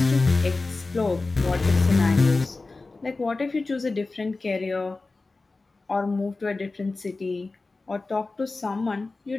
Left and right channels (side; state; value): right; quieter; 3.5 dB